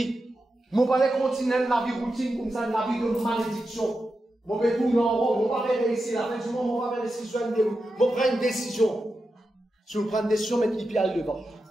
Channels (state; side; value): normal; both; correlation 0.89